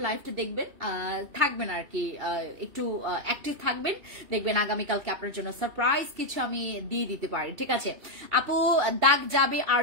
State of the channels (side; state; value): left; late; 2.7 ms